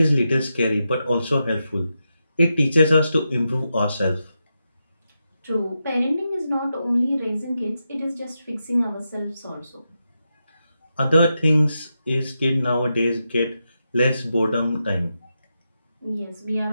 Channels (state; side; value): inverted; both; correlation -0.87